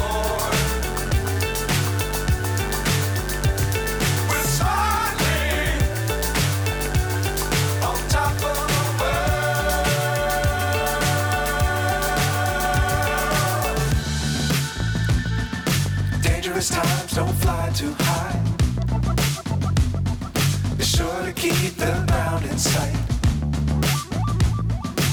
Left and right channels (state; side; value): identical; both; correlation 1.00